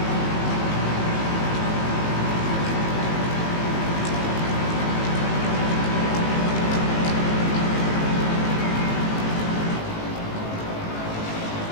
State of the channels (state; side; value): late; right; 18 ms